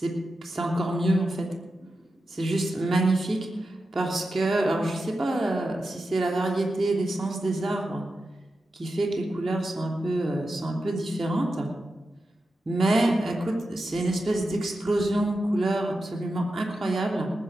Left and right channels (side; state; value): both; normal; correlation 0.90